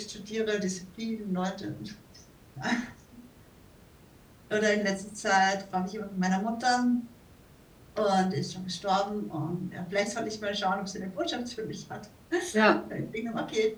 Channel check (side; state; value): both; identical; correlation 1.00